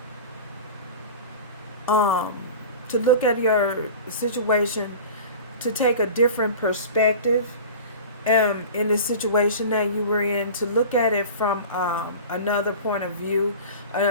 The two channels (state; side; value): inverted; both; correlation -0.36